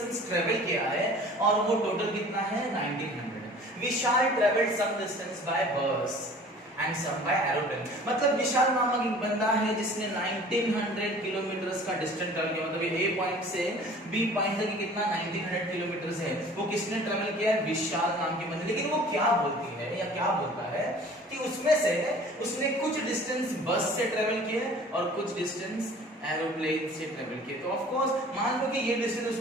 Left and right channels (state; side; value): normal; both; correlation 0.47